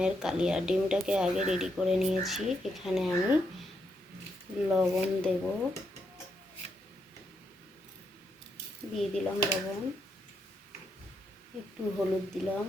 কালিয়া। ডিমটাকে আগে রেডি করে নিয়েছি। এখানে আমি লবণ দেব, দিয়ে দিলাম লবণ, একটু হলুদ দিলাম।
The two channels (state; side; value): normal; both; correlation 0.79